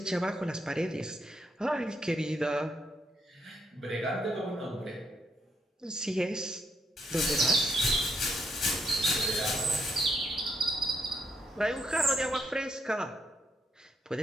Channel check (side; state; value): both; normal; correlation 0.76